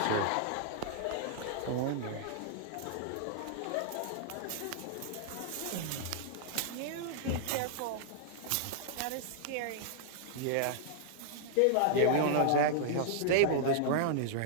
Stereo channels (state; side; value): different; both; correlation -0.01